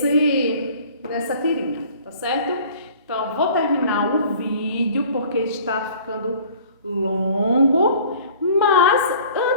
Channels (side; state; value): both; inverted; correlation -0.50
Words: tirinha, tá certo? Então, vou terminar o vídeo porque está ficando longo, mas